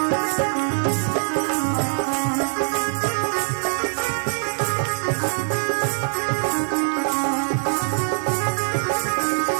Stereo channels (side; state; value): left; silent; digital silence